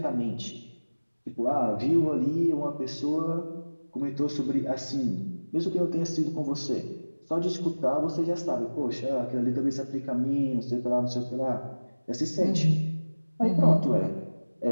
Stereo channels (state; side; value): inverted; both; correlation -1.00